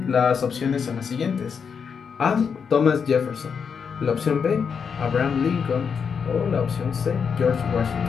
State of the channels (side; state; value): right; quieter; 6.4 dB